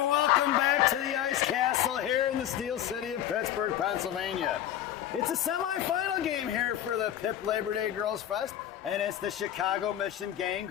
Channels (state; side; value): quieter; right; 11.5 dB